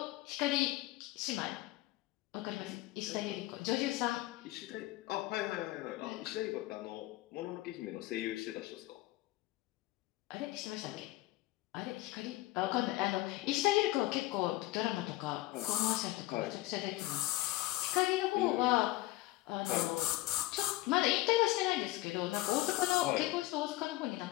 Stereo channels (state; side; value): quieter; right; 18.0 dB